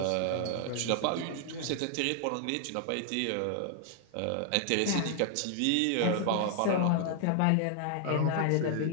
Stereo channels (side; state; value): both; different; correlation 0.00